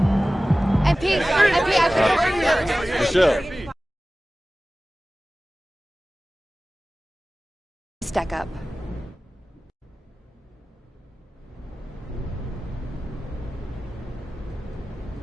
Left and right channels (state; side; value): normal; both; correlation 0.97